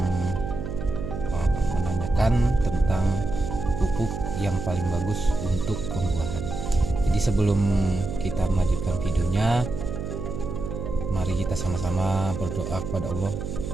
menanyakan tentang pupuk yang paling bagus untuk pembuahan. Jadi sebelum kita melanjutkan videonya, mari kita sama-sama berdoa kepada Allah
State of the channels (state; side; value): noise; right; hum, 5 dB below the sound